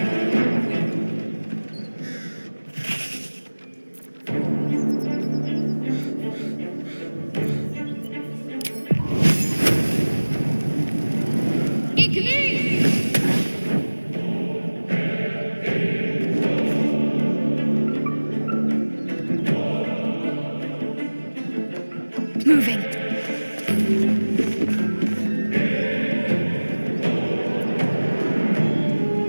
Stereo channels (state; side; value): inverted; both; correlation -1.00